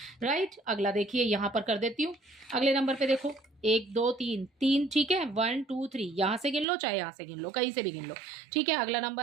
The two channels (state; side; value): drops out; left; at 6.7 s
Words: राइट। अगला देखिए यहाँ पर कर देती हूँ, अगले नंबर पे देखो 1 2 3 3, ठीक है, 1 2 3, यहाँ से गिन लो चाहे यहाँ से गिन लो, कहीं से भी गिन लो, ठीक है। अगला